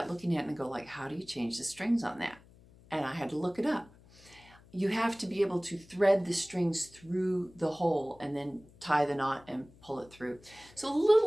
looking at it and go like, how do you change the strings on that? And I had to look it up. You have to be able to thread the strings through the hole and then tie the knot and pull it through. So a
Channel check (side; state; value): left; noise; hum, 25 dB below the sound